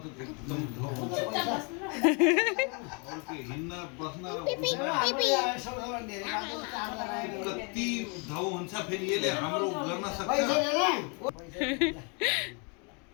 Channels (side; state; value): right; quieter; 34.7 dB